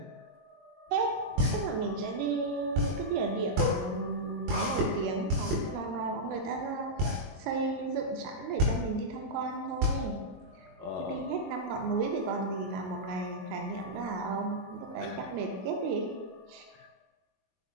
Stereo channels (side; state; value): left; late; 22 ms